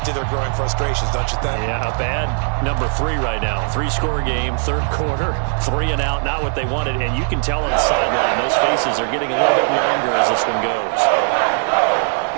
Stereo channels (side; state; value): left; silent; 57 dB below the other